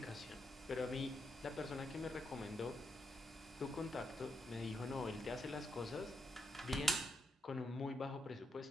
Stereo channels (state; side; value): normal; both; correlation 0.81